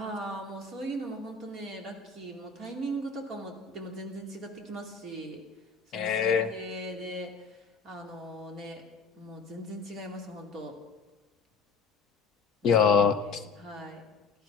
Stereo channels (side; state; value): right; quieter; 4.7 dB